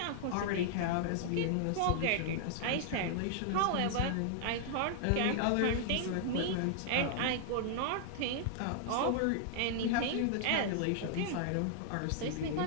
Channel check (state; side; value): different; both; correlation -0.01